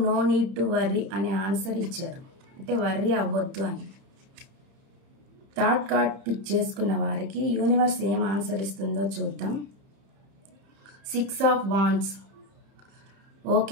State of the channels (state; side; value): late; left; 31 ms